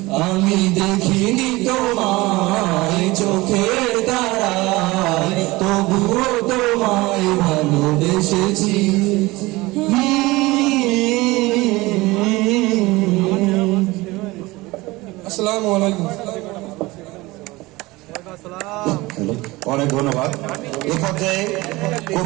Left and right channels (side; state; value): left; quieter; 21.0 dB